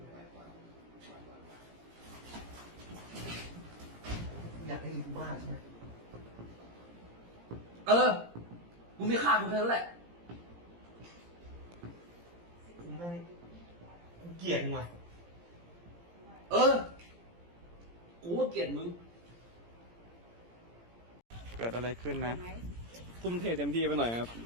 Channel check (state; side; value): late; left; 17 ms